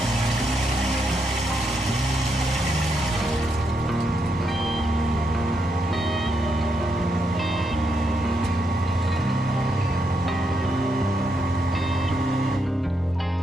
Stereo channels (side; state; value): both; normal; correlation 0.80